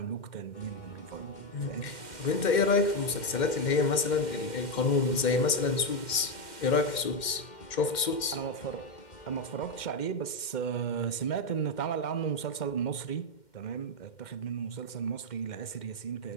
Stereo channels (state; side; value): late; right; 2.1 ms